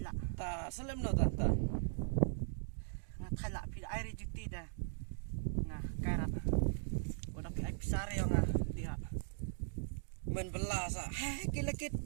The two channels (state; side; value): silent; left; digital silence